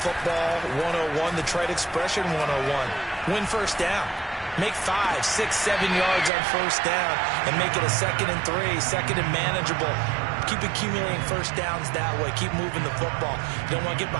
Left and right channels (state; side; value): drops out; left; at 6.3 s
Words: 101, the trade expression 101. Win first down. Make 5, 6, 7 yards on first down and make it a 2nd and 3, second and manageable. Keep accumulating first downs that way. Keep moving the football. You don't want to get